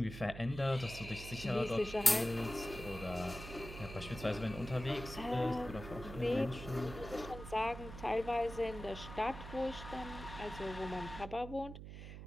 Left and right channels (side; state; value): right; noise; hum, 10 dB below the sound